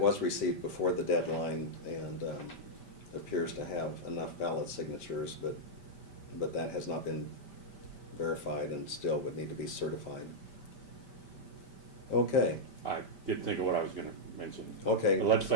received before the deadline, and appears to have enough valid signatures, but that has not been verified and still would need to be certified. Okay. I did think of what I was gonna mention. Okay, The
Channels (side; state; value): right; late; 5.1 ms